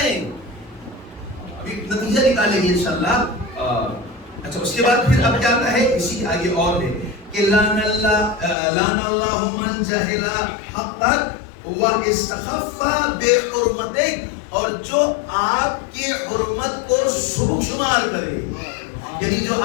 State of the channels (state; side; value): drops out; right; at 8.6 s